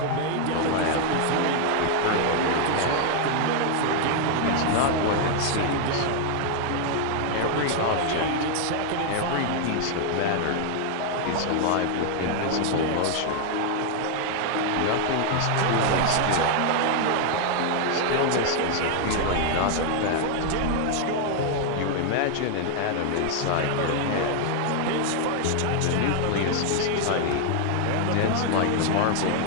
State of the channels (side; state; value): both; different; correlation 0.00